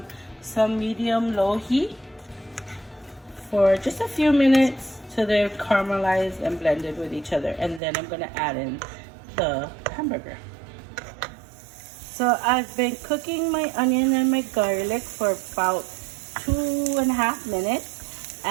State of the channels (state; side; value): drops out; left; at 7.8 s